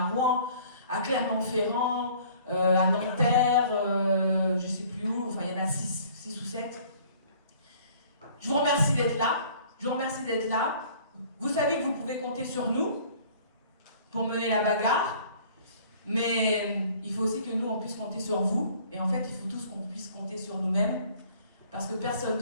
Rouen, à Clermont-Ferrand, à Nanterre, je ne sais plus où, enfin il y en a 6 ou 7. Je vous remercie d'être là. Vous savez que vous pouvez compter sur nous pour mener la bagarre, mais il faut aussi que nous, on puisse compter sur vous. Et en fait, il faut tous qu'on puisse compter sur nous-mêmes, parce que personne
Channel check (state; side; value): inverted; both; correlation -0.53